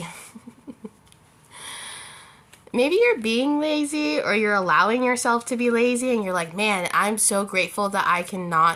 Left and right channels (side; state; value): both; identical; correlation 1.00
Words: Maybe you're being lazy or you're allowing yourself to be lazy and you're like, man, I'm so grateful that I